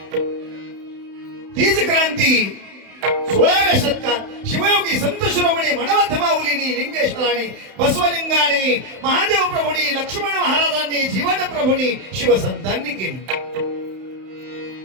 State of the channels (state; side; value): late; left; 31 ms